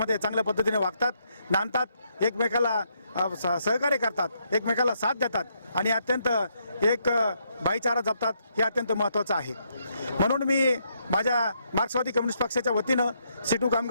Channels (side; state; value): both; inverted; correlation -0.76